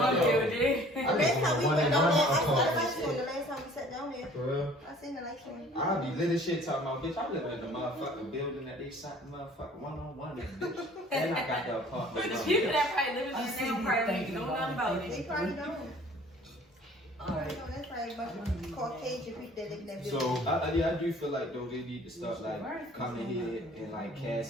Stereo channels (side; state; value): both; normal; correlation 0.52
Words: building. building. The last time we went down there, I saw the lights apartment. on. The last time we sat down there, For real? I seen the lights on. I'll be lit as shit talking about, bitch, I live in the motherfucking building that they shot the motherfucking one-on-one in, bitch. And I got the apartment. But the people that probably live in I there see now you probably thinking don't know about about it. it. They probably don't. Alright. No, that's probably a bunch of Caucasian people that live in that building. So, I do feel like, though, they need to start, like, coming here and, like,